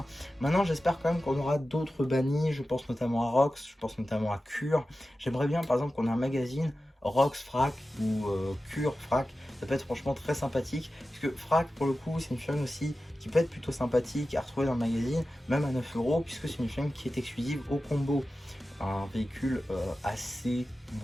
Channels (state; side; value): normal; both; correlation 0.94